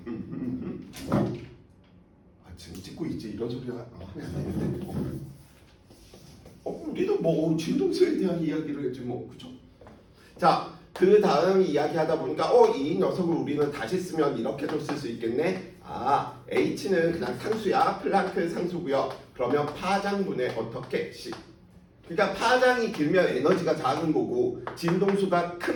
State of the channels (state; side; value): identical; both; correlation 1.00